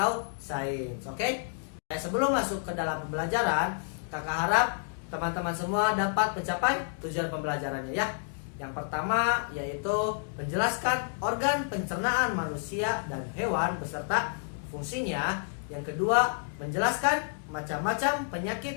sains. Oke? Sebelum masuk ke dalam pembelajaran, kakak harap teman-teman semua dapat mencapai tujuan pembelajarannya ya. Yang pertama yaitu menjelaskan organ pencernaan manusia dan hewan beserta fungsinya. Yang kedua, menjelaskan macam-macam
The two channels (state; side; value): silent; right; digital silence